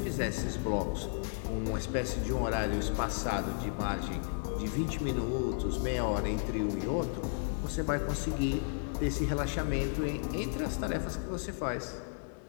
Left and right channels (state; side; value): silent; right; digital silence